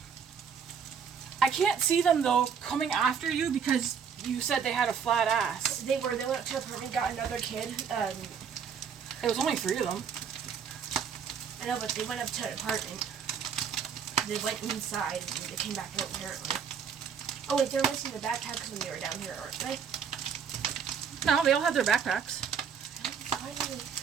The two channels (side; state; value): left; quieter; 6.9 dB